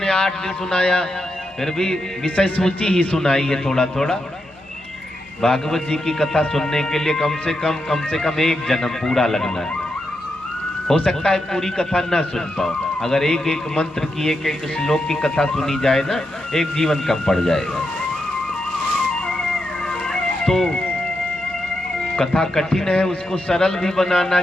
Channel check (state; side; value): noise; right; hum, 30 dB below the sound